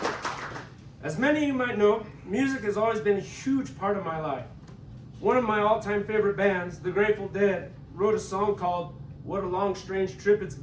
As many of you might know, music has always been a huge part of my life. One of my all-time favorite bands, the Grateful Dead, wrote a song called "What a Long Strange Trip It's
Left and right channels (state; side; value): identical; both; correlation 1.00